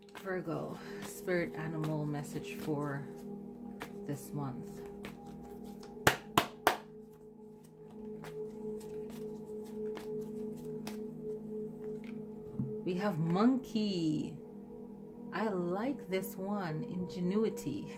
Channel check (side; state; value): both; identical; correlation 1.00